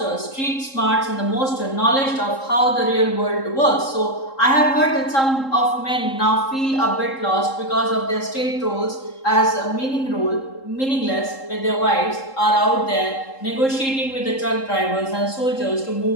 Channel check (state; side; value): late; right; 3.7 ms